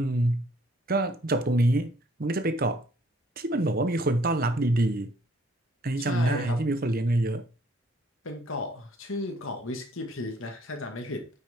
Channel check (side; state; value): both; normal; correlation 0.63